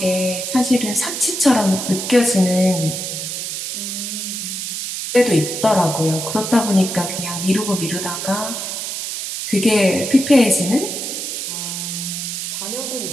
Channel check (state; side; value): noise; right; hiss, 5 dB below the sound